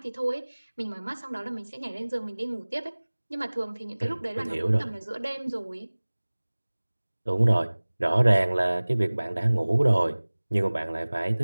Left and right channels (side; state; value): both; inverted; correlation -1.00